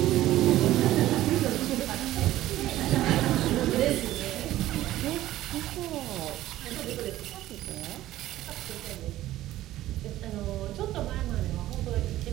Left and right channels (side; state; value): left; quieter; 14.7 dB